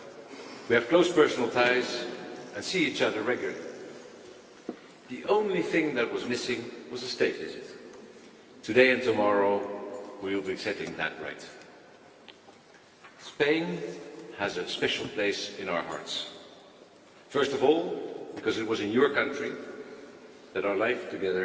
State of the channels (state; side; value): identical; both; correlation 1.00